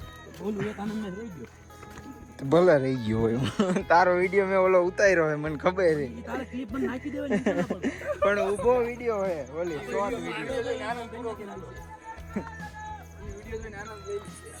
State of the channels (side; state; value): both; identical; correlation 1.00